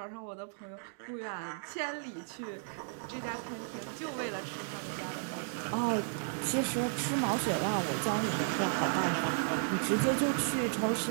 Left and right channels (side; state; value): left; silent; digital silence